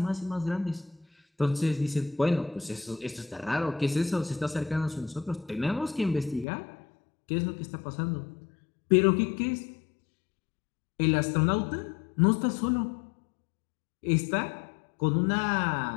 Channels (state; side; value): drops out; right; at 6.5 s